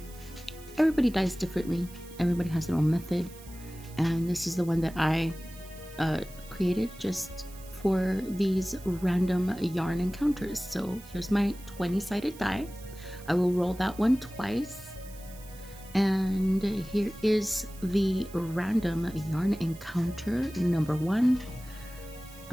everybody dyes differently. Everybody has their own method. And this is the one that I created just for these random yarn encounters. So here's my 20-sided die. I will roll that one twice. And here is the random yarn encounter number 1. I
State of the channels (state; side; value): noise; right; hiss, 20 dB below the sound